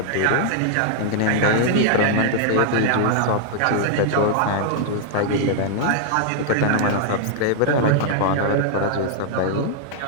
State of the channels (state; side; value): different; both; correlation -0.01